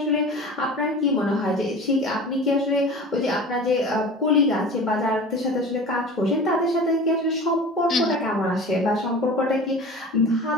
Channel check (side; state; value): both; normal; correlation 0.37